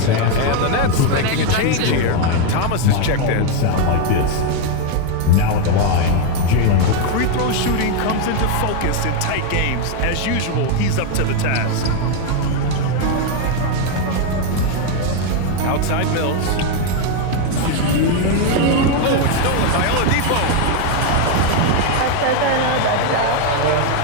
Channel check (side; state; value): both; different; correlation 0.01